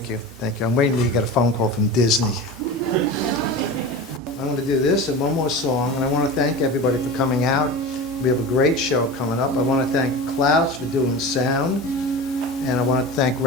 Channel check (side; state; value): both; normal; correlation 0.30